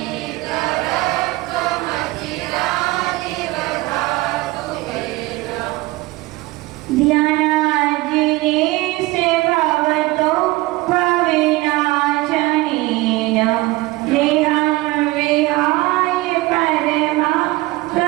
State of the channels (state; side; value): quieter; left; 20.3 dB